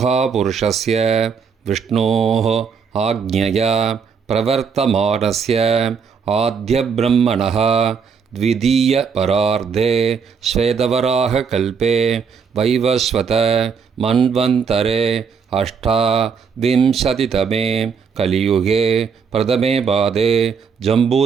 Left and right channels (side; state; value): left; quieter; 6.1 dB